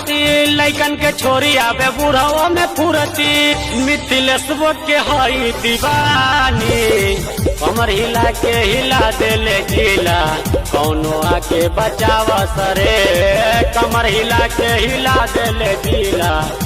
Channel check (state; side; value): identical; both; correlation 1.00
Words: लैकन के छोरी आवे बुढ़ाओ में फुरती। मिथिलेश्वर के हई दीवानी, कमर हिला के हिला देले जिला, कोनो आके बचावस रे। कमर हिला के हिला देले जिला,